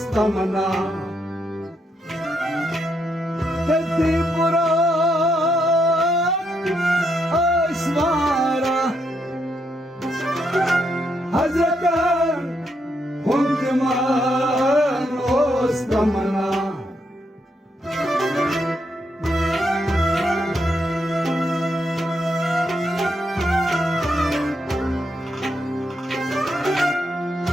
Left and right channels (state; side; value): normal; both; correlation 0.78